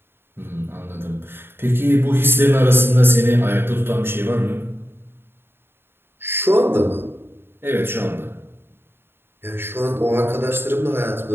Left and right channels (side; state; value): left; late; 0.11 ms